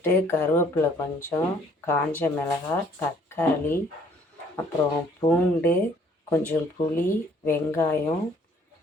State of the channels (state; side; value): normal; both; correlation 0.60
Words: கருவேப்பிலை கொஞ்சம், காஞ்ச மிளகாய், தக்காளி, அப்புறம் பூண்டு, கொஞ்சம் புளி, வெங்காயம்,